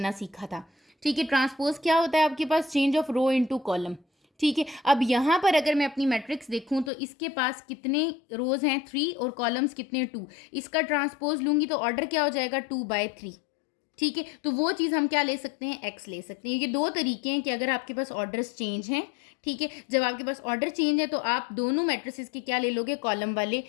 सीखा था। ठीक है, ट्रांसपोज क्या होता है आपके पास, change of row into column. ठीक है, अब यहाँ पर अगर मैं अपनी मैट्रिक्स देखूँ तो इसके पास कितने रोज हैं, 3 और कॉलम्स कितने, 2। इसका ट्रांसपोज लूँगी तो ऑर्डर क्या हो जाएगा, 2/3। ठीक है, तो वो चीज़ हम क्या ले सकते हैं, एक्स ले सकते हैं। ये 2 तरीके हैं कि अगर आपके पास ऑर्डर्स चेंज हैं, ठीक है, जब आपके पास ऑर्डर चेंज है तो आप दोनों मैट्रिसेस के क्या ले लोगे, कॉलम वाले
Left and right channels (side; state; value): right; drops out; at 6.9 s